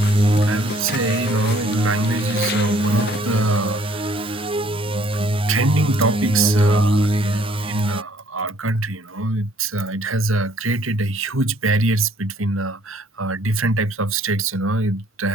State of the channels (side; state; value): both; normal; correlation 0.61